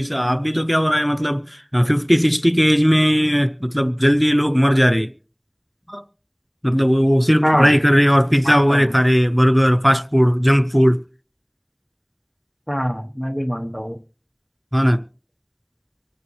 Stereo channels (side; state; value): both; identical; correlation 1.00